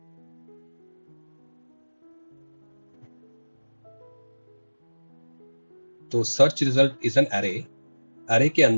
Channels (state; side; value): inverted; both; correlation -1.00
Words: तो search result is an array, array के